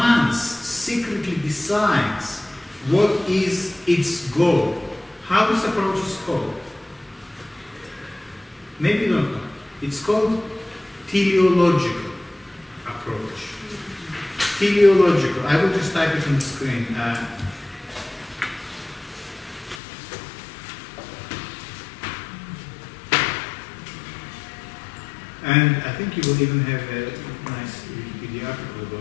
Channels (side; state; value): right; drops out; at 19.8 s